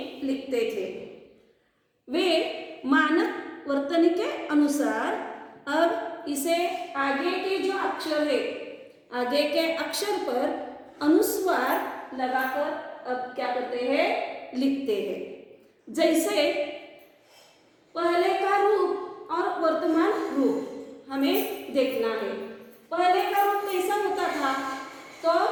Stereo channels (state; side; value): identical; both; correlation 1.00